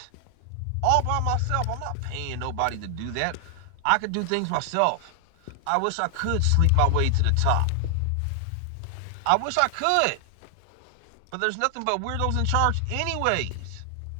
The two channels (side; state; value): both; different; correlation 0.00